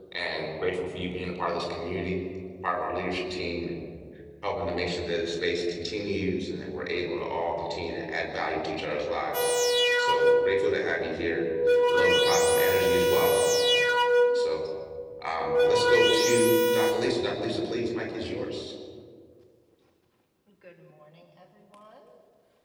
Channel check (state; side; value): identical; both; correlation 1.00